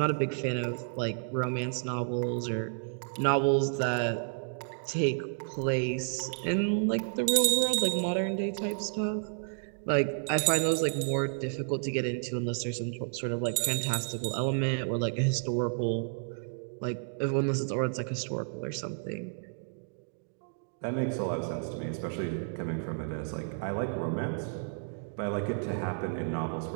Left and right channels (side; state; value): left; silent; digital silence